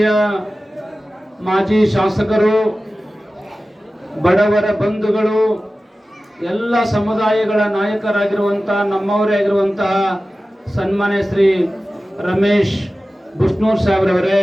ಮಾಜಿ ಶಾಸಕರು, ಬಡವರ ಬಂಧುಗಳು, ಎಲ್ಲ ಸಮುದಾಯಗಳ ನಾಯಕರಾಗಿರುವಂತಹ ನಮ್ಮವರೇ ಆಗಿರುವಂತಹ ಸನ್ಮಾನ್ಯ ಶ್ರೀ ರಮೇಶ್ ಬುಷ್ನೂರ್ ಸಾಹೇಬ್ರವರೇ,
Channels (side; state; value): both; normal; correlation 0.95